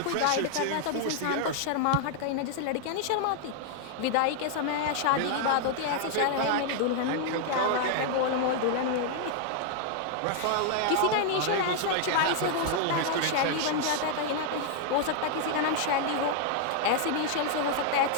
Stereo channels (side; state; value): both; different; correlation -0.01